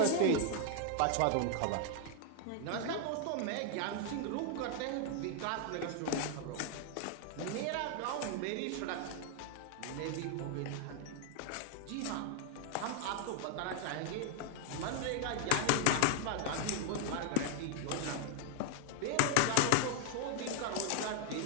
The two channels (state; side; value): different; both; correlation 0.00